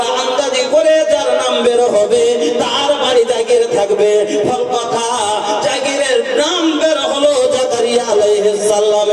আন্দাজি করে যার নাম বের হবে তার বাড়ি জাগির থাকবে। ফল কথা জাগিরের নাম বের হলো জাকারিয়া আলাইহিস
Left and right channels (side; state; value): both; identical; correlation 1.00